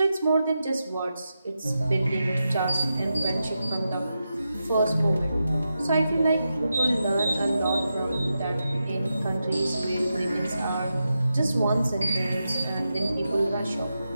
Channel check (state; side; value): inverted; both; correlation -0.89